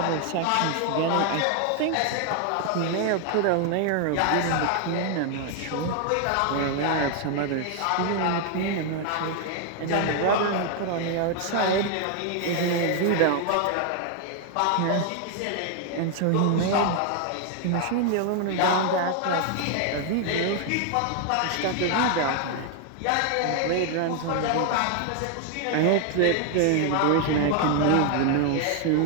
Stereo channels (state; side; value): different; both; correlation 0.00